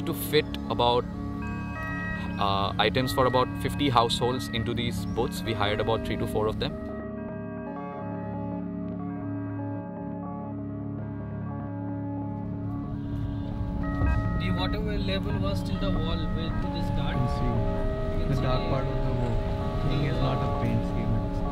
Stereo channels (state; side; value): identical; both; correlation 1.00